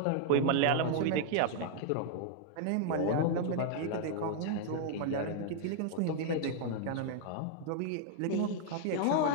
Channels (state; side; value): different; both; correlation 0.00